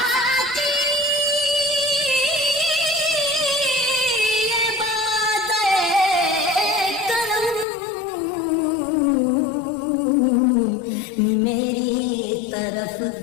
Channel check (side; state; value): right; drops out; at 7.7 s